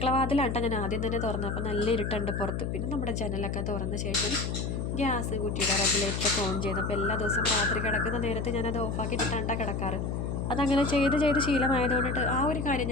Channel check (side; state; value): left; noise; hum, 2 dB below the sound